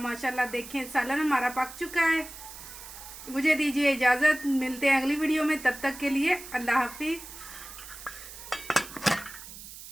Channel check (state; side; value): noise; right; hiss, 14 dB below the sound